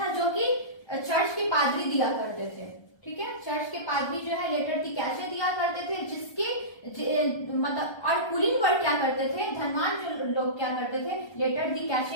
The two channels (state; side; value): late; right; 1.3 ms